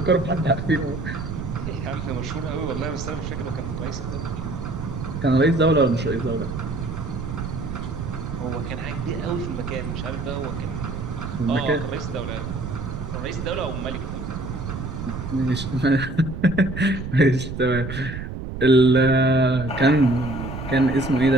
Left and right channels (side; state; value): right; noise; rumble, 7 dB below the sound